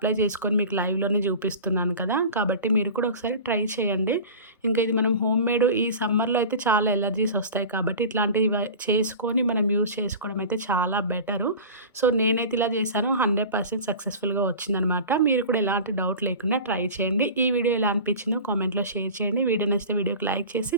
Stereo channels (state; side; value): inverted; both; correlation -0.35